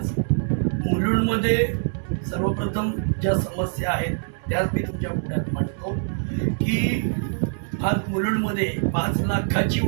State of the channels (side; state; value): left; silent; digital silence